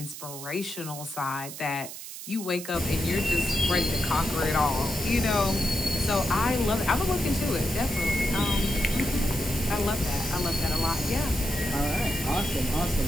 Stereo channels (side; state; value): right; noise; hiss, 11 dB below the sound